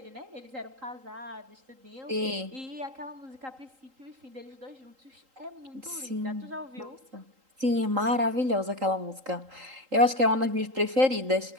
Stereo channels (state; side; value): late; left; 3.8 ms